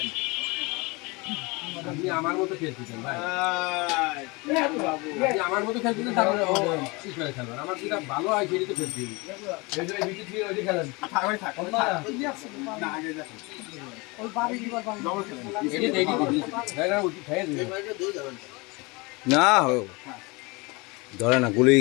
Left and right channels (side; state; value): right; quieter; 26.1 dB